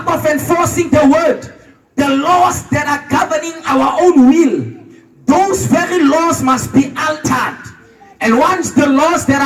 of enforcing the word, the laws that are governing our own will, those very laws must be altered. And once the laws that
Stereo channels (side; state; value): both; identical; correlation 1.00